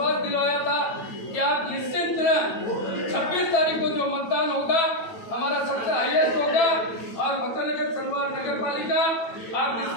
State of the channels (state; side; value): late; right; 9.0 ms